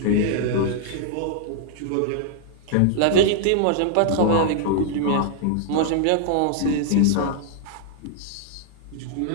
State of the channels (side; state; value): both; different; correlation -0.01